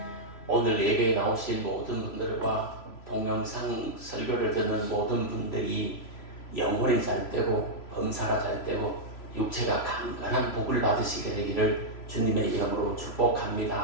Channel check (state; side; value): late; right; 3.0 ms